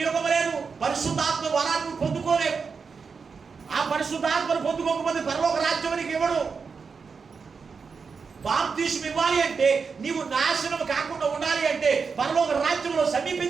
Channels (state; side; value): quieter; left; 5.3 dB